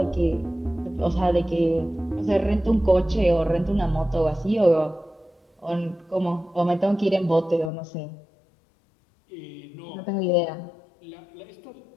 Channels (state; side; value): drops out; right; at 7.7 s